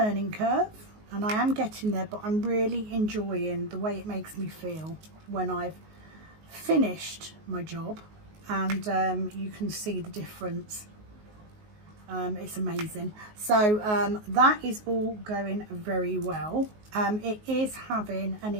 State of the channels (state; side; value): late; left; 19 ms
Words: curve, and I am getting there, but I'm really enjoying the way it makes me feel when I've finished my job, and you can see the difference. It's amazing. So that is all going very well. It is having an